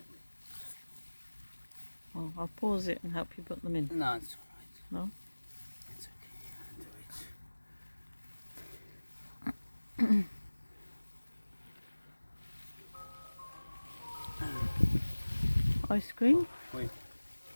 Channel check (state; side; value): inverted; both; correlation -1.00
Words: Oh, I'll pause it and help you put them in. No, it's alright. No? It's okay. I'll do it. Ice cream? Wait.